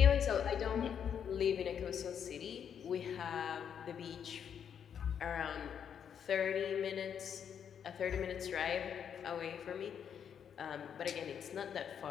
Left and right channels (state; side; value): quieter; right; 8.1 dB